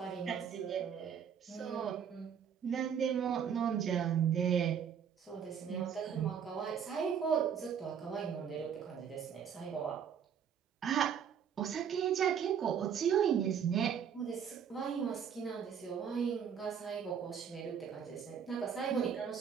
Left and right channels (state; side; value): quieter; left; 7.8 dB